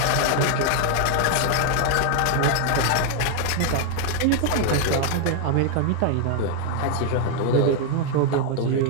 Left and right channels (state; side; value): different; both; correlation 0.00